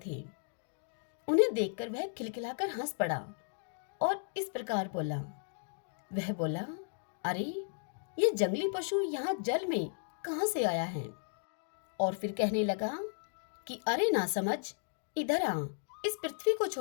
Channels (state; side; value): silent; right; digital silence